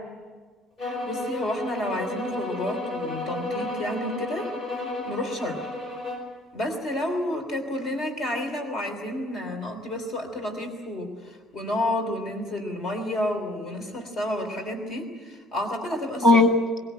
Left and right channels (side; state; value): both; normal; correlation 0.55